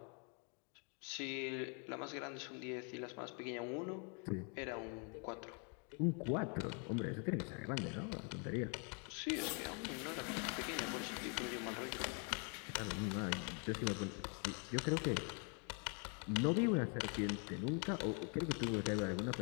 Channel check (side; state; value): right; quieter; 38.2 dB